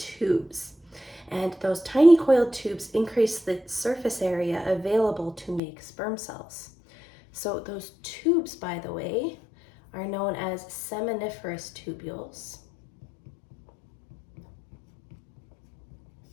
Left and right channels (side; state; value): right; drops out; at 5.6 s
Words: And those tiny coiled tubes increase the surface area available to make sperm cells. So those tubes, by the way, are known as seminiferous tubules.